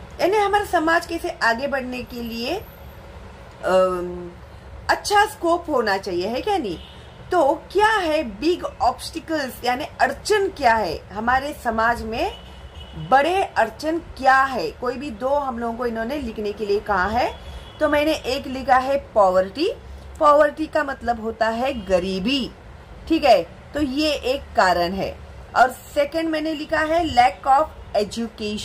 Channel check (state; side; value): identical; both; correlation 1.00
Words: यानी हमारा समाज कैसे आगे बढ़ने के लिए अच्छा स्कोप होना चाहिए, है क्या नहीं। तो क्या है बिग ऑब्स्टिकल्स, यानी अड़चन क्या है हमारे समाज में, बड़े अड़चन क्या है। कोई भी 2 हम लोगों को इन्होंने लिखने के लिए कहा है, तो मैंने एक लिखा है पॉवर्टी। पॉवर्टी का मतलब होता है गरीबी, ठीक है, तो ये एक कारण है। और सेकंड मैंने लिखा है लैक ऑफ